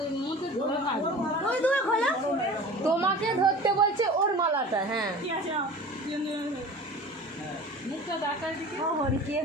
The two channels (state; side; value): normal; both; correlation 0.39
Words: মধ্যে ধরে থাকবে। ওই দুটো খোলো। তোমাকে ধরতে বলছে ওর মালাটা। হ্যাঁ মুখটা দেখার দিকে। ও হরি কে